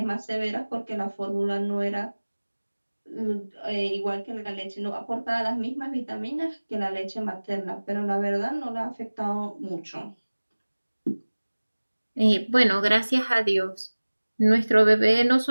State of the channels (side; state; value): both; inverted; correlation -1.00